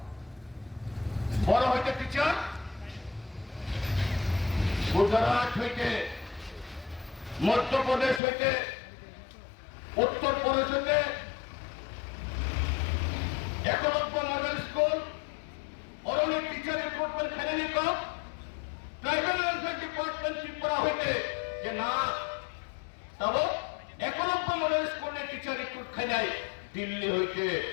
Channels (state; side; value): drops out; right; at 8.2 s